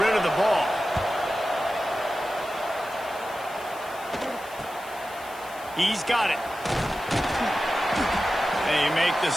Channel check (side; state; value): left; noise; hiss, 19 dB below the sound